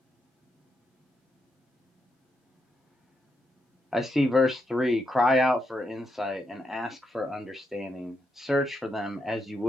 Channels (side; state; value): both; normal; correlation 0.81